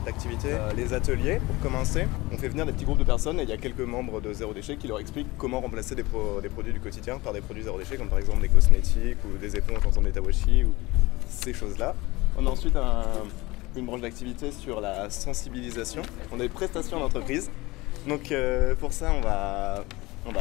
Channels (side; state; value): right; quieter; 21.2 dB